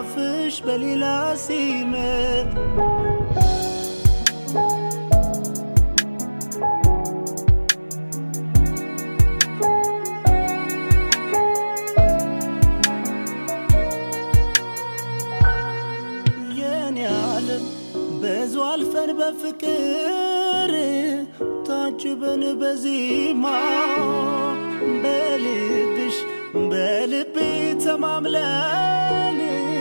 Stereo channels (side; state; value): both; inverted; correlation -1.00